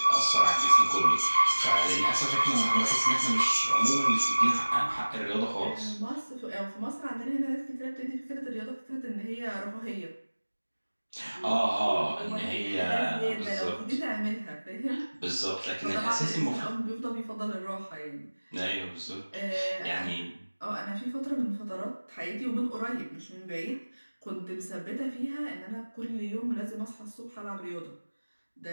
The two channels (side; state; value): both; inverted; correlation -1.00